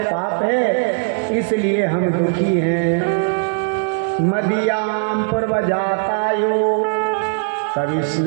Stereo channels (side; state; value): left; silent; 67 dB below the other